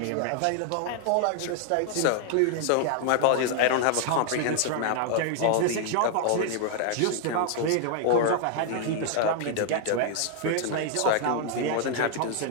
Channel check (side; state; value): both; different; correlation 0.00